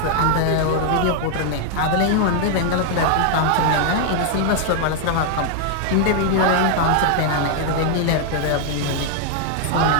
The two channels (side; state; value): both; different; correlation 0.00